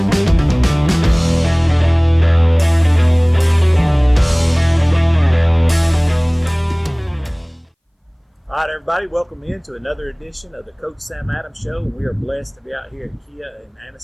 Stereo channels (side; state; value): both; identical; correlation 1.00